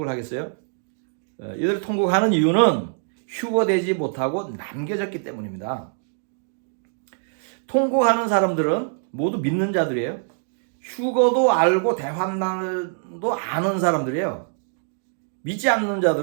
하겠어요? 이들이 통곡하는 이유는 휴거되지 못하고 남겨졌기 때문입니다. 통곡하는 사람들은 모두 믿는 자들이에요. 휴거도 알고 대환란도 아는 사람들이에요. 믿지 않는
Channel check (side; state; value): left; silent; digital silence